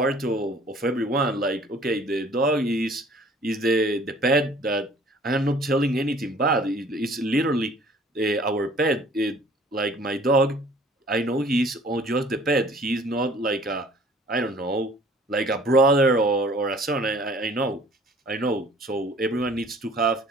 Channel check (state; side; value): normal; both; correlation 0.53